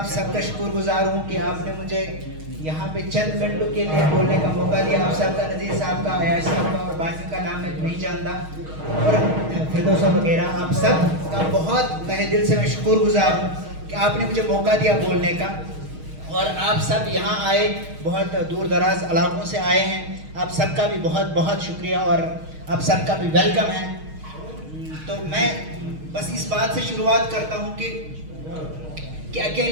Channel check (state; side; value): late; left; 6.4 ms